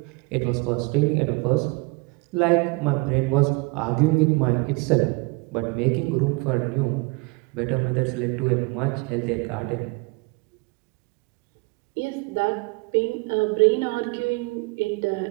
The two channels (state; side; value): quieter; left; 28.1 dB